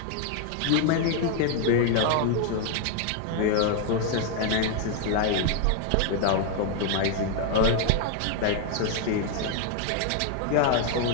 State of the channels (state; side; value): different; both; correlation 0.00